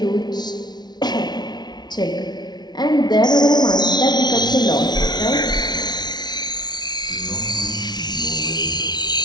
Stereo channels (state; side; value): late; right; 0.20 ms